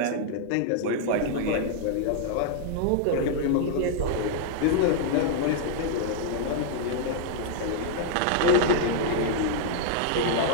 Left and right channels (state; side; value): different; both; correlation -0.01